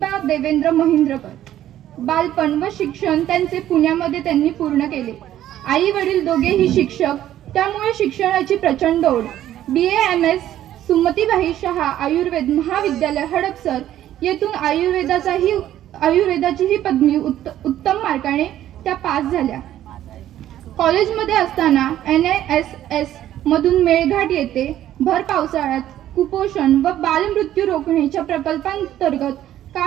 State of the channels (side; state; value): left; quieter; 12.4 dB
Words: देवेंद्र महिंद्रकर बालपण व शिक्षण त्यांचे पुण्यामध्ये त्यांनी पूर्ण केले। आई वडील दोघेही शिक्षक, त्यामुळे शिक्षणाची प्रचंड ओढ। BA-MS सुमतीबाई शहा आयुर्वेद महाविद्यालय हडपसर येथून आयुर्वेदाची ही पदवी उत्तम मार्काने त्या पास झाल्या। कॉलेजमध्ये असताना NISS मधून मेळघाट येथे भर पावसाळ्यात कुपोषण व बालमृत्यू रोखण्याच्या प्रकल्पांतर्गत